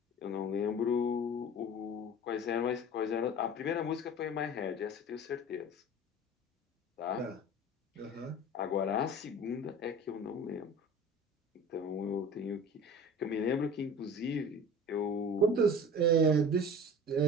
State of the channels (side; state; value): both; normal; correlation 0.39